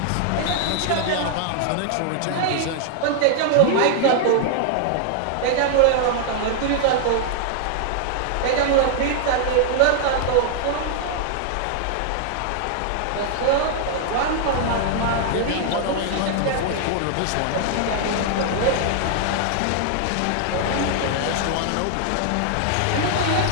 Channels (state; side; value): different; both; correlation 0.00